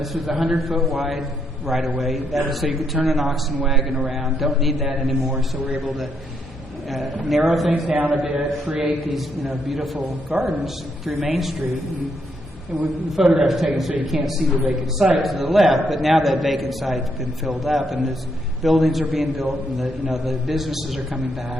was 100-foot wide right-of-way. That was so you could turn an oxen wagon around. Don't need that anymore, so we're able to narrow things down a bit, create these beautiful gardens through Main Street. And the photograph's taken so you can't see the vacant site to the left, but now that vacant site's been filled up, and there's buildings are being built, and the businesses are coming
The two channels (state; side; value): normal; both; correlation 0.76